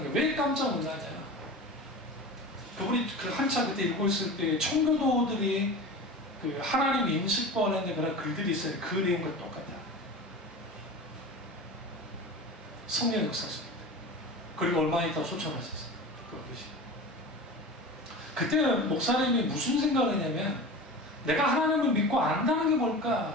게 왜 깜짝 놀라냐? 그분이 그 한참 그때 읽고 있을 때 청교도들이 그 하나님 인식권에 그런 글들이 있어요. 그 내용과 똑같아요. 성령 역사입니다. 그리고 얼마 있다 소천하셨어요. 그것이. 그때 목사님이 무슨 생각을 했냐면 내가 하나님을 믿고 안다는 게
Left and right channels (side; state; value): both; normal; correlation 0.33